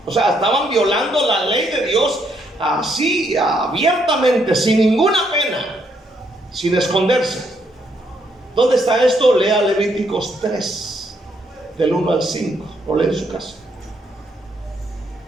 O sea, estaban violando la ley de Dios así, abiertamente, sin ninguna pena, sin esconderse. ¿Dónde está esto? Lea Levíticos 3, del 1 al 5, o lee en su casa.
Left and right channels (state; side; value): normal; both; correlation 0.73